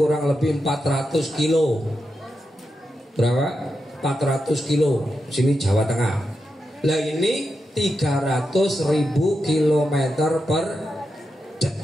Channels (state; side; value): normal; both; correlation 0.87